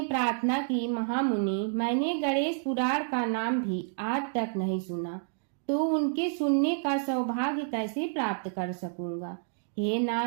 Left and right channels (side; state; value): left; silent; digital silence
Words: प्रार्थना की, महामुनि, मैंने गणेश पुराण का नाम भी आज तक नहीं सुना, तो उनके सुनने का सौभाग्य कैसे प्राप्त कर सकूंगा? हे